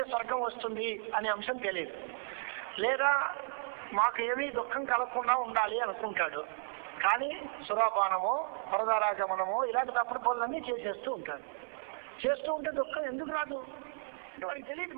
స్వర్గం వస్తుంది అనే అంశం తెలియదు. లేదా మాకు ఏమీ దుఃఖం కలగకుండా ఉండాలి అనుకుంటాడు. కానీ సురాపానమో పరదారాగమనమో ఇలాంటి తప్పుడు పనులన్నీ చేసేస్తూ ఉంటాడు. చేస్తూ ఉంటే దుఃఖం ఎందుకు రాదు? వాడికి తెలియదు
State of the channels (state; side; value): silent; left; 55 dB below the other